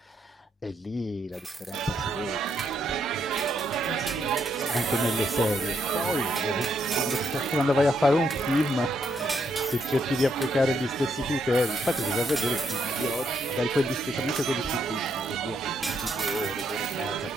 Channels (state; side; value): normal; both; correlation 0.76